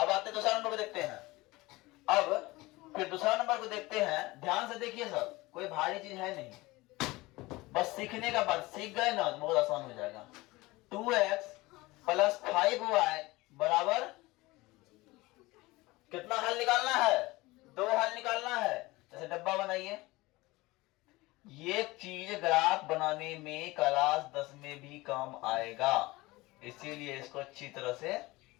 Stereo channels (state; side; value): quieter; right; 21.0 dB